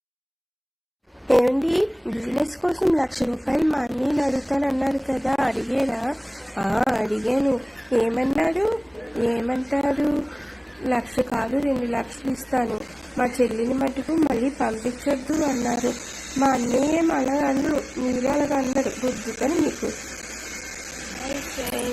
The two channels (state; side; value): identical; both; correlation 1.00